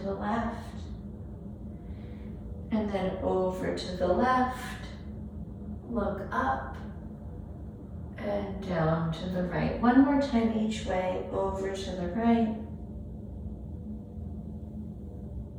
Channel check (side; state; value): both; identical; correlation 1.00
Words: the left, and then over to the left, look up, and down to the right. One more time each way, over to the right,